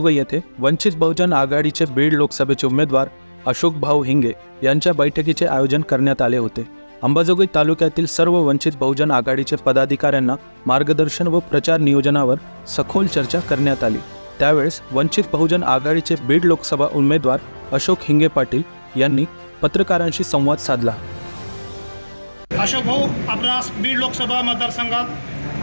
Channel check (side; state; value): both; inverted; correlation -1.00